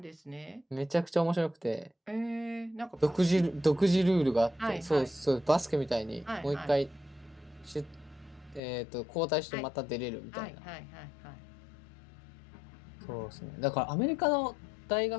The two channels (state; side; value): drops out; right; at 8.6 s